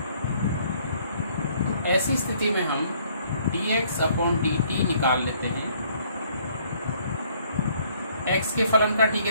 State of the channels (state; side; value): inverted; both; correlation -0.63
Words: ऐसी स्थिति में हम dx/dt निकाल लेते हैं। x के फलन का t